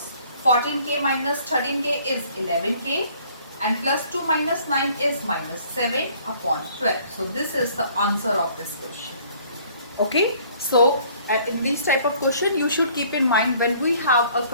14k minus 13k is 11k and plus 2 minus 9 is minus 7 upon 12. So this is the answer of this question. Okay, so in this type of question you should keep in mind, when we have a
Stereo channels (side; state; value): both; inverted; correlation -0.58